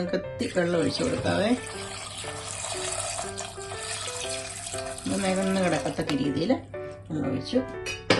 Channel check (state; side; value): identical; both; correlation 1.00